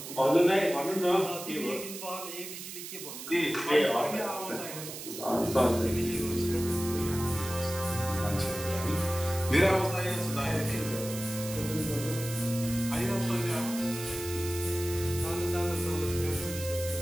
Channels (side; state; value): right; noise; hiss, 10 dB below the sound